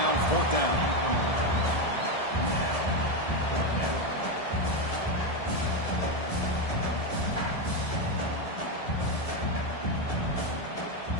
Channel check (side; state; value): right; late; 1.7 ms